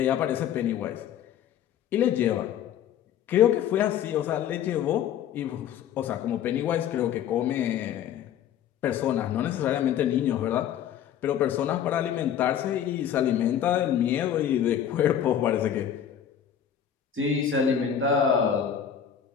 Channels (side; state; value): right; quieter; 9.4 dB